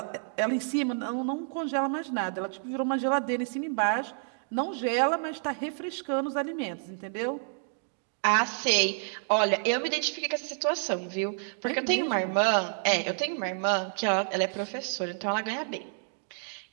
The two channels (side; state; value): left; silent; digital silence